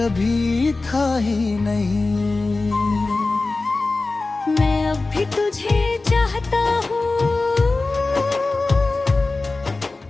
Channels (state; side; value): quieter; right; 3.5 dB